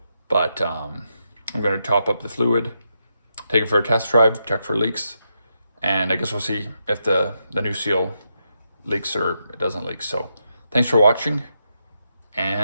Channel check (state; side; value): inverted; both; correlation -0.83